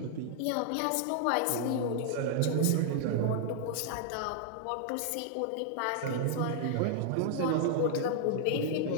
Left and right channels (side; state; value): both; different; correlation 0.00